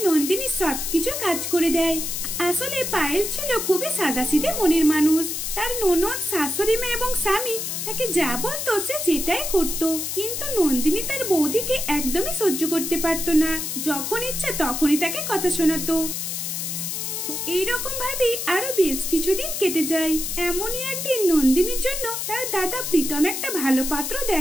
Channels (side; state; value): left; noise; hiss, 3 dB below the sound